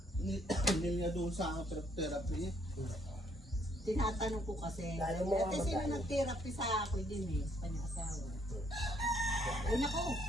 niya doon sa therapy. Tinatanong ko kasi. Lalo mo Ate, ang sino magkano? nag-therapy sa ako din eh, sa kanyang asawa. Ay, nako.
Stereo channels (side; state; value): both; normal; correlation 0.67